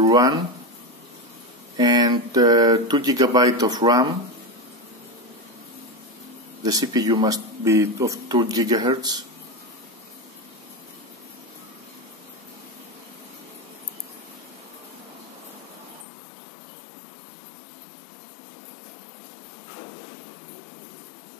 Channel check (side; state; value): right; drops out; at 16.1 s